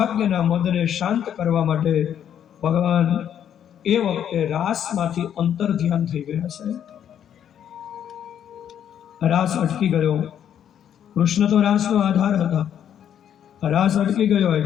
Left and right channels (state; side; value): quieter; right; 9.5 dB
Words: મદને શાંત કરવા માટે ભગવાન એ વખતે રાસમાંથી અંતર ધ્યાન થઈ ગયા છે. રાસ અટકી ગયો. કૃષ્ણ તો રાસનો આધાર હતા. રાસ અટકી ગયો